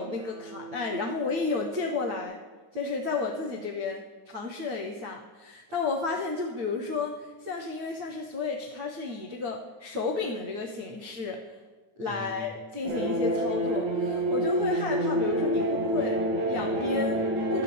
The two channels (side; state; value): left; late; 9.5 ms